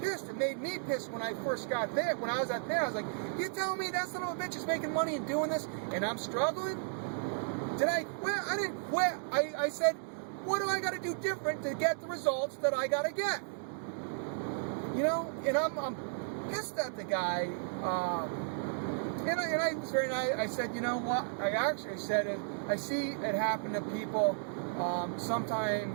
It made me pissed when I first got there. When I was out there, I was like, you telling me that son of a bitch is making money and doing this and I'm struggling? Did I quit? I didn't quit. I said, what do I got to do different to get the results that I got to get? You know, and I'm pissed at the guy. And I was very nice. I said, you know what? I actually said it. I see it happen to people.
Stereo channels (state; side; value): silent; left; digital silence